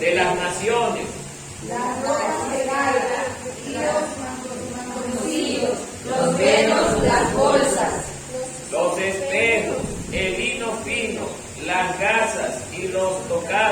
las naciones, las ropas de gala y los mantoncillos, los velos, las bolsas, los espejos, el lino fino, las gasas y los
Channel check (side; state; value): both; identical; correlation 1.00